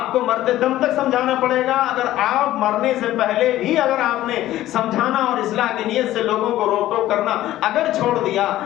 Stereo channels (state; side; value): quieter; right; 14.4 dB